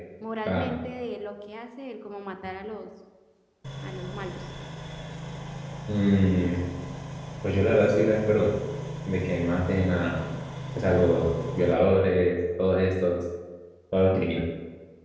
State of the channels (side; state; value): both; identical; correlation 1.00